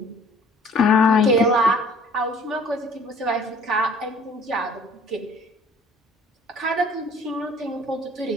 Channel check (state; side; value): normal; both; correlation 0.53